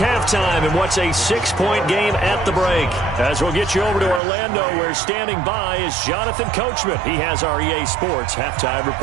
in what's a 6-point game at the break. As we'll get you over to Orlando, where standing by is Jonathan Coachman. He has our EA Sports halftime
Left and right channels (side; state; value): left; drops out; at 4.2 s